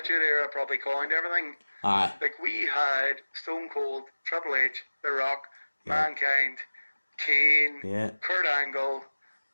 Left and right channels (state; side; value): inverted; both; correlation -1.00